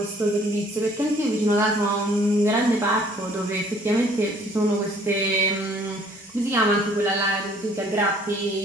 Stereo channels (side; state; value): both; normal; correlation 0.58